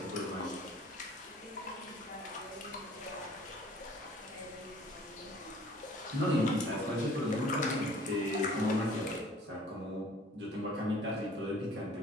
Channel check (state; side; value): normal; both; correlation 0.52